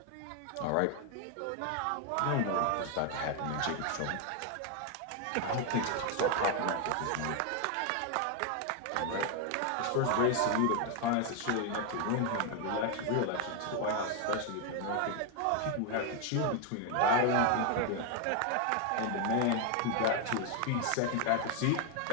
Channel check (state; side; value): different; both; correlation 0.01